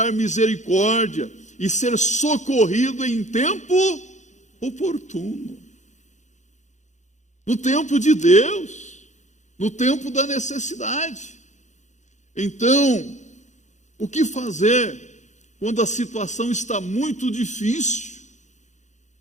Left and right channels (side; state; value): right; late; 0.35 ms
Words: misericórdia e ser socorrido em tempo oportuno. No tempo de Deus, no tempo da necessidade. Então, o que fazer quando a situação está muito difícil?